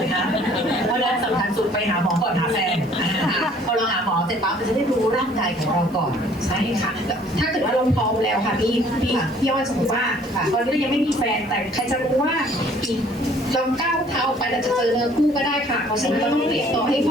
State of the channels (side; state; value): right; noise; hiss, 29 dB below the sound